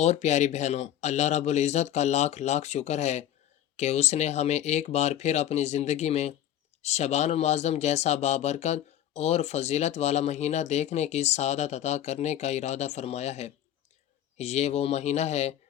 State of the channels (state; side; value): quieter; right; 11.4 dB